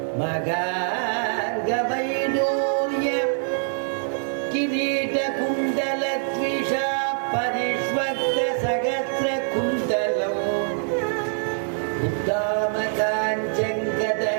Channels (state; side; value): silent; left; 56 dB below the other